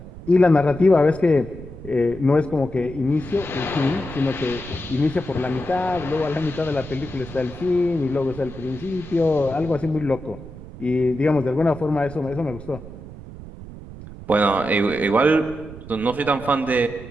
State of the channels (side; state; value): right; noise; rumble, 14 dB below the sound